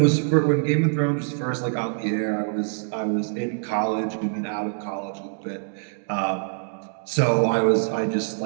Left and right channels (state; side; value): silent; left; digital silence